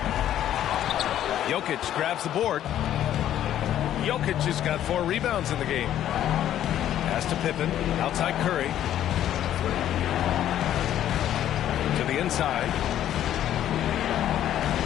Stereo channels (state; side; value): quieter; right; 11.5 dB